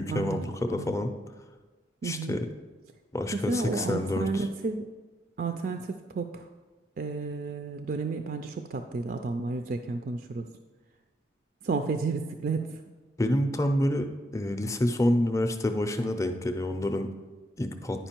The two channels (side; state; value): both; normal; correlation 0.76